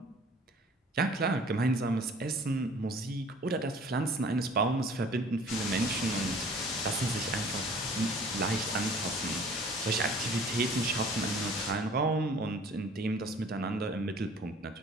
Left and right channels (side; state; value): both; normal; correlation 0.50